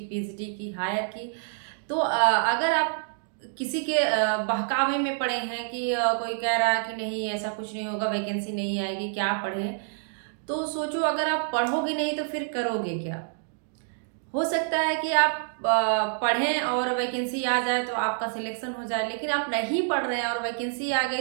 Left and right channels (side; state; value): left; silent; digital silence